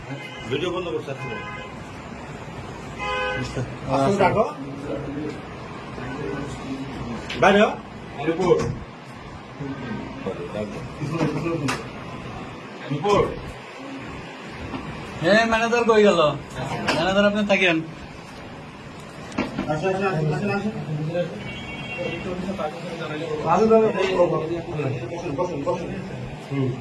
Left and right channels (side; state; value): both; identical; correlation 1.00